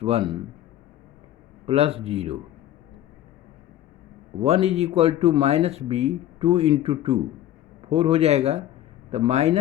1 plus 0, 1 is equal to -b 2 into 2 4 हो जाएगा, तो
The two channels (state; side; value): quieter; right; 12.8 dB